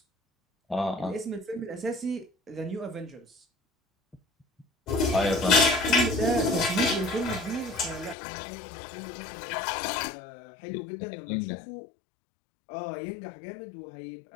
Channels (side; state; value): right; drops out; at 8.2 s